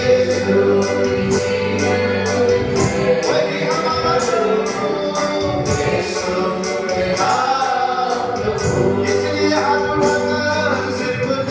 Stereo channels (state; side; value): identical; both; correlation 1.00